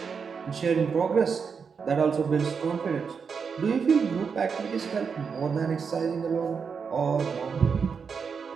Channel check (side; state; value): left; quieter; 6.0 dB